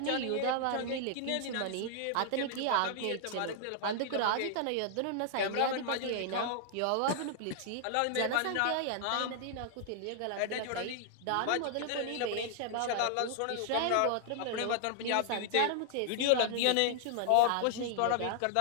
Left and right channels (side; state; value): both; different; correlation -0.01